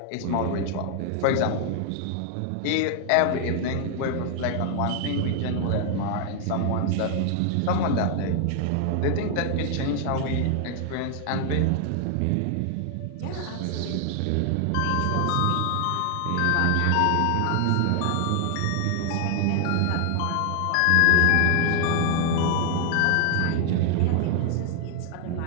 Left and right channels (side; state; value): both; different; correlation 0.00